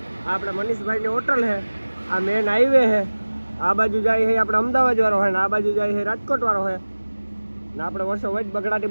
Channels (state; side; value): inverted; both; correlation -1.00